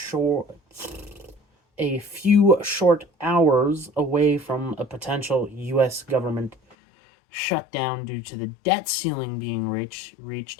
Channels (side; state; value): right; drops out; at 6.8 s